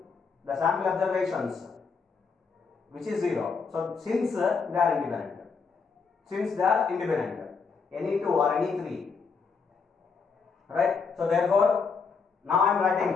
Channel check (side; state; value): right; quieter; 5.3 dB